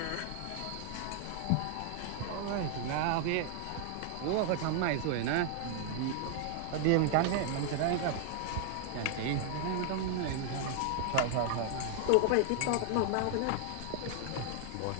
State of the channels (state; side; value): different; both; correlation 0.00